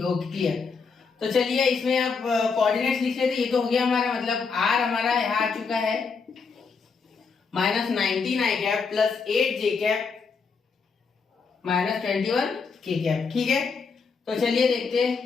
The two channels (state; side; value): quieter; right; 5.1 dB